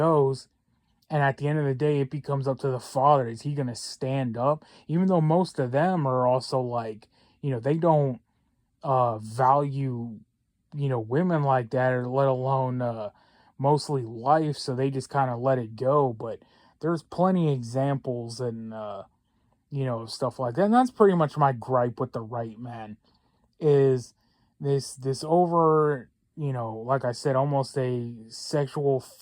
And at the end of the day, it becomes up to the father. Is he going to stand up? Even though most of them are also like, they don't value, women like that, or let alone mostly life. So they just kind of let it go. But there's plenty of examples and, stuff like that. And that's pretty much my gripe with the right, man, is this over, like I said, almost a sexual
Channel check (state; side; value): identical; both; correlation 1.00